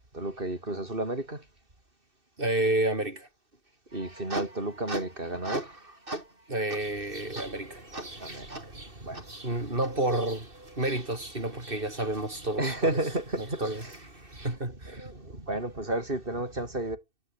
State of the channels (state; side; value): late; left; 2.6 ms